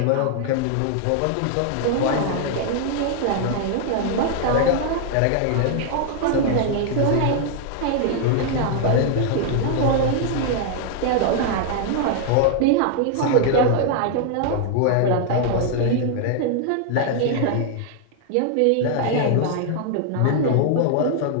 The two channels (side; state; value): both; different; correlation 0.00